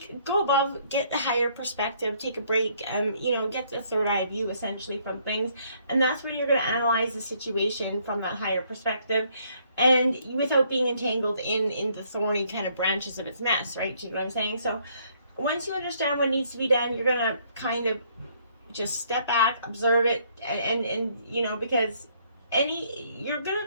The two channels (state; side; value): inverted; both; correlation -0.67